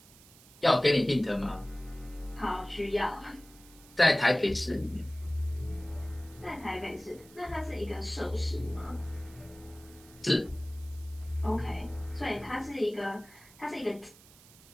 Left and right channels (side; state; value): right; noise; hiss, 23 dB below the sound